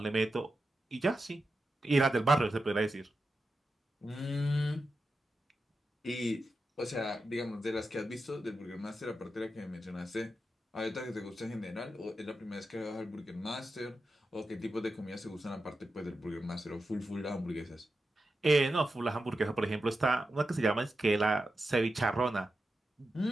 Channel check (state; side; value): normal; both; correlation 0.90